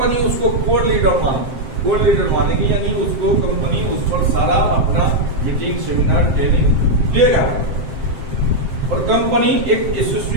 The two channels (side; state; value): left; late; 7.6 ms